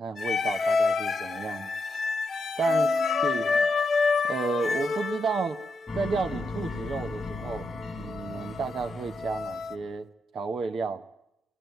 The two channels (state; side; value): normal; both; correlation 0.83